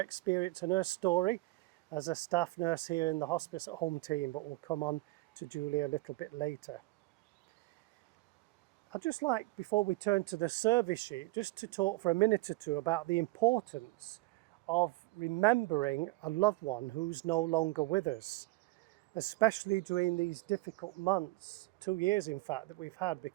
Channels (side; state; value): left; quieter; 21.3 dB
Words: and her story as a staff nurse here in the Hospice at Home team, but we'll come on to Julie a little bit later. I'd just like, before we turn to the service sheet, just to talk for a minute or two about the importance of remembering a loved one who's no longer with us, especially during these difficult months, 2 years in fact, that we've had